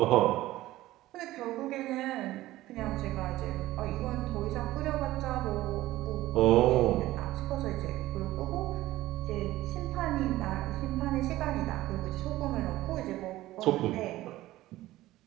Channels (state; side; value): quieter; left; 16.3 dB